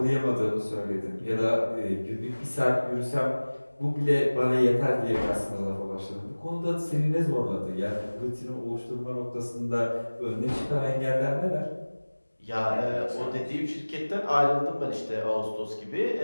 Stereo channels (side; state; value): both; inverted; correlation -1.00